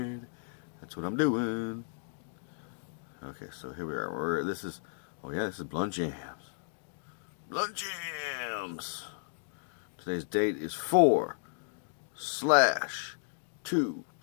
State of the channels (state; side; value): silent; right; digital silence